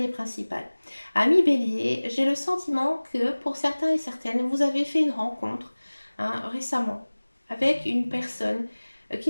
et principale? Ami Bélier, j'ai le sentiment que pour certains et certaines, vous avez fait une rencontre, hein, récemment avec une personne qui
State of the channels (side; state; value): both; inverted; correlation -1.00